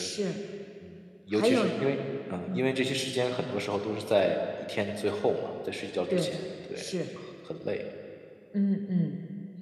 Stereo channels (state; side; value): identical; both; correlation 1.00